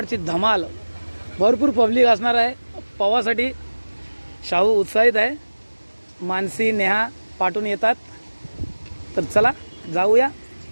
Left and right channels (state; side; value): inverted; both; correlation -1.00